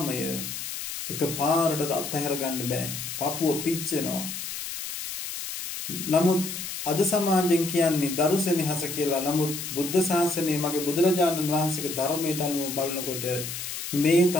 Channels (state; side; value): noise; left; hiss, 7 dB below the sound